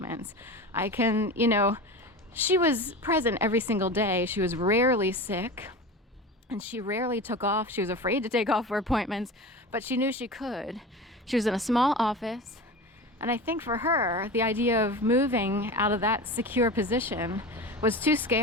I can, she was present every single day. She was rarely sick, and she rarely took off. She was afraid to take off for appointments, but she knew she could. She was in a small office, and I think for her, the idea of moving out of that secure position was too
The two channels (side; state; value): both; normal; correlation 0.30